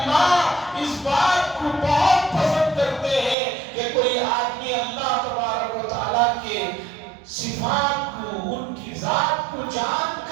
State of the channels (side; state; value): left; drops out; at 3.4 s